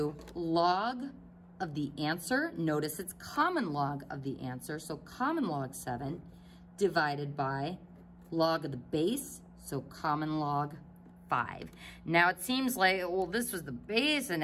log of the answer. Notice it's common log of the answer, so common log 7 divided by log of the base, so common log 5. Now it seems like, well, this was the base and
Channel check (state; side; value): identical; both; correlation 1.00